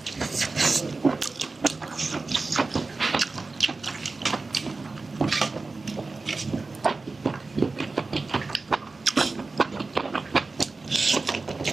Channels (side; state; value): left; quieter; 3.7 dB